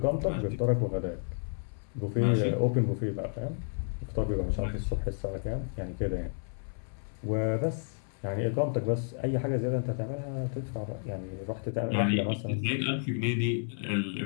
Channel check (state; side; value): silent; right; 57 dB below the other